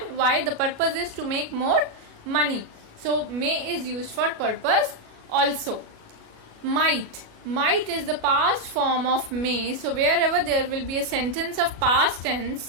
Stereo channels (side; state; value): left; late; 37 ms